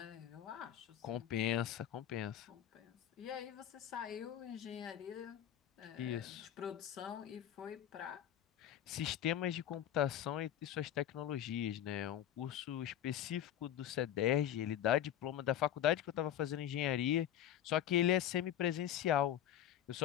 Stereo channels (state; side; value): quieter; right; 10.8 dB